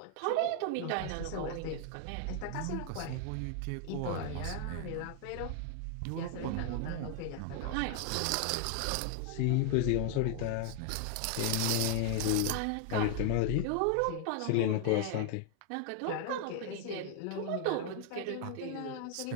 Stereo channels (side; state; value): both; different; correlation 0.00